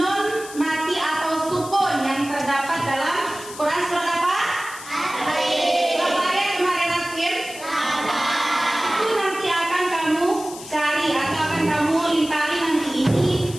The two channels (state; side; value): noise; left; hiss, 14 dB below the sound